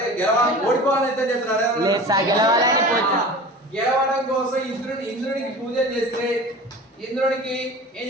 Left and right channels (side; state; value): both; normal; correlation 0.37